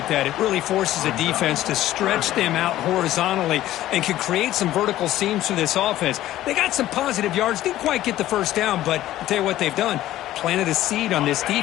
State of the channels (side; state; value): right; quieter; 14.2 dB